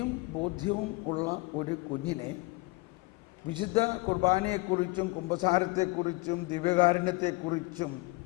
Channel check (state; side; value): quieter; right; 24.5 dB